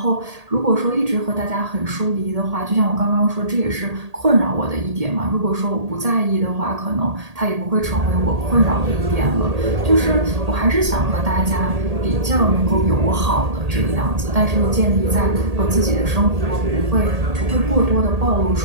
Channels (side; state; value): left; late; 1.8 ms